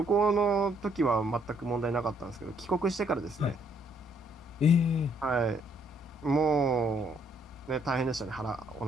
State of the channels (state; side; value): normal; both; correlation 0.68